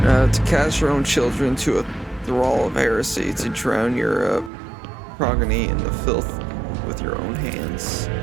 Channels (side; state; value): left; drops out; at 4.5 s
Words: To cast your own children to a thrall of heresy, to drown your progeny in the filth with your own hands.